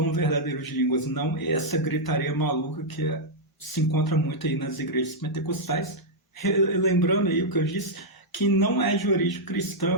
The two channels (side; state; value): both; normal; correlation -0.06